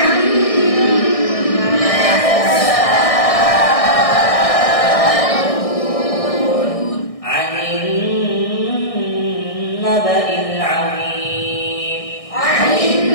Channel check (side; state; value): right; late; 1.6 ms